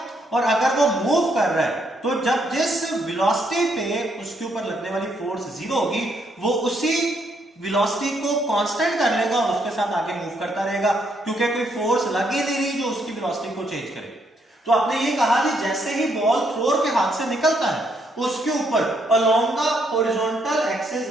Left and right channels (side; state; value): both; normal; correlation 0.73